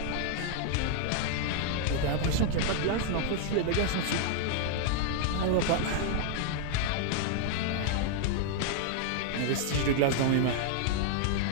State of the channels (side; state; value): both; different; correlation 0.00